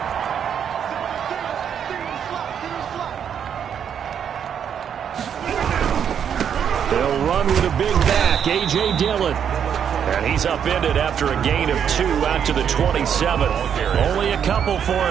They'll run with a big back, A.J. Dillon. And he's upended after a gain of 2 out to the 27. Only a couple for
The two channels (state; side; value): quieter; left; 8.2 dB